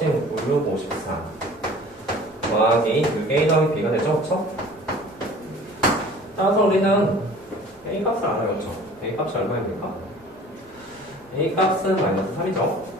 5654 더하기 6a 더하기 b가 되죠, 그쵸? 따라서 우리는 a 값을 알아요, 그쵸? a 값이 얼마입니까? a 값은 마이너스 3이죠,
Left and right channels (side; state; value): both; normal; correlation 0.46